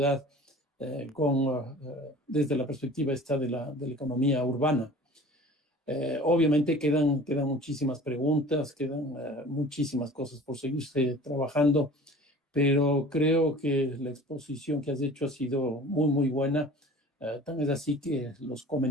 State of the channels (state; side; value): normal; both; correlation 0.43